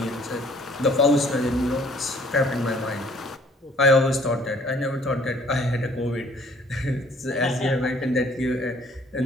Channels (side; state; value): both; normal; correlation 0.58